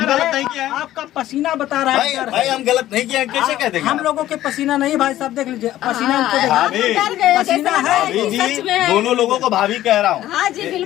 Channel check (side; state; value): right; quieter; 13.9 dB